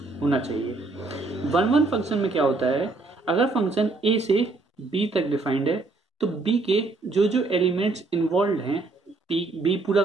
होना चाहिए। वन वन फंक्शन में क्या होता है, अगर फंक्शन ए से बी तक डिफाइंड है तो बी के जो जो एलिमेंट्स इन्वॉल्व हैं, बी पूरा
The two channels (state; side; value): quieter; left; 3.5 dB